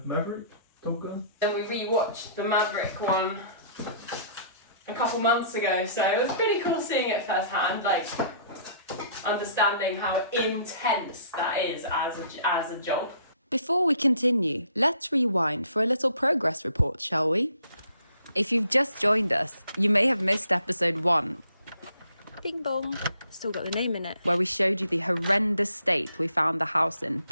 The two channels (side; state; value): both; inverted; correlation -0.60